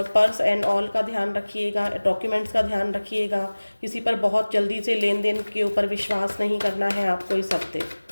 पर्स एंड ऑल का ध्यान रखिएगा, डॉक्यूमेंट्स का ध्यान रखिएगा। किसी पर बहुत जल्दी से लेन देन के ऊपर विश्वास नहीं करना है आपको इस हफ्ते।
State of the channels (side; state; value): both; inverted; correlation -1.00